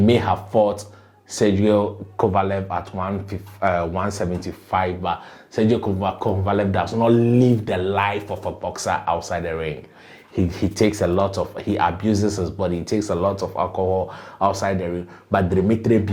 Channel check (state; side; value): identical; both; correlation 1.00